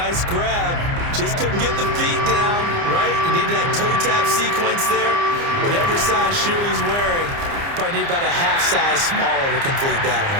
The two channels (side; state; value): left; late; 29 ms